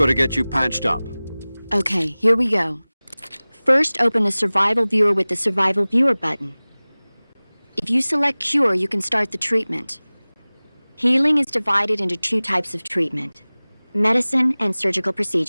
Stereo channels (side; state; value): both; inverted; correlation -0.99